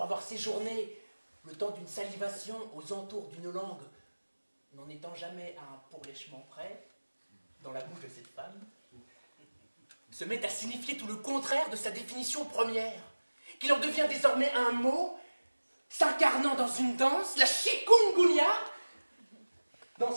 avoir séjourné le temps d'une salivation aux entours d'une langue, n'en étant jamais à un pourlèchement près, dans la bouche de cette femme, se met à signifier tout le contraire de sa définition première, qu'il en devient désormais un mot s'incarnant dans une danse, la chikungunya,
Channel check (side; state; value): both; inverted; correlation -1.00